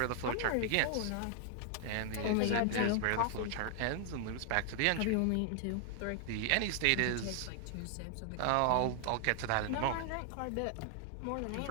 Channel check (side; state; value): both; different; correlation 0.00